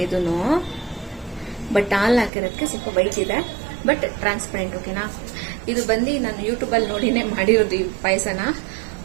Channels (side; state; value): left; drops out; at 2.3 s